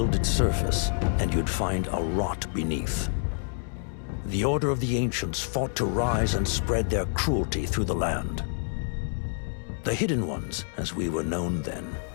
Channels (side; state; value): right; silent; 60 dB below the other